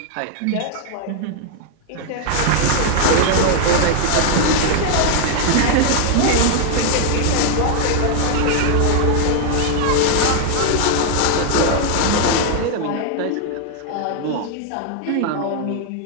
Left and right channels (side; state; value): both; different; correlation 0.00